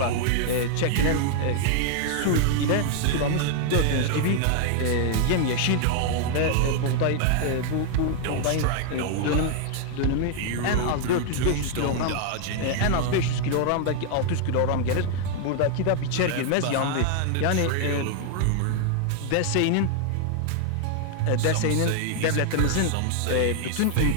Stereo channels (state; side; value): different; both; correlation 0.00